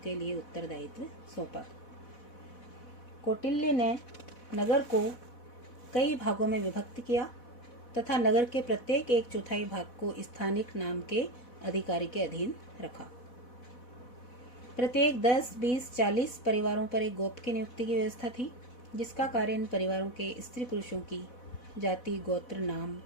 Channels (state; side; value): late; right; 4.1 ms